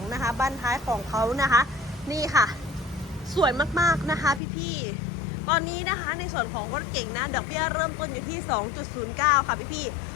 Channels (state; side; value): drops out; right; at 4.4 s